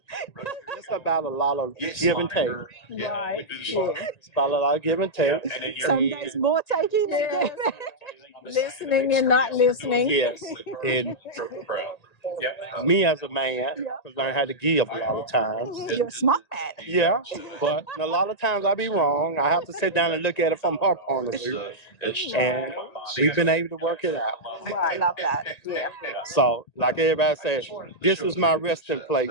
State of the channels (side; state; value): right; late; 1.9 ms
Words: it's about a lot of give and take. Right. It's about a lot of give and take. Some days more taking than giving. Listening and not listening. Yes. And me as a man, I've learned how to give a lot of times. You're a smart man. Yeah, but a lot of times I be wrong. I have to sit down and look at it from her point of view. And we've been able to work it out. I love that. Yeah. So, like everybody says, this is my resting